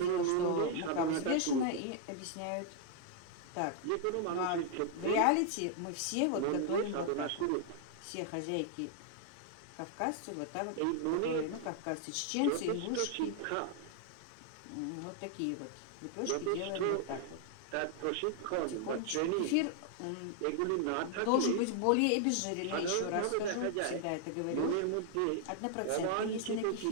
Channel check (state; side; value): different; both; correlation 0.00